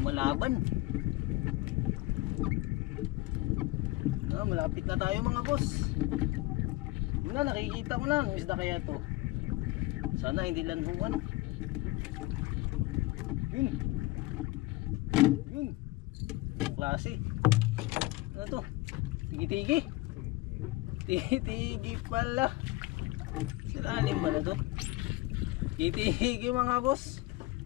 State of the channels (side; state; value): right; quieter; 20.3 dB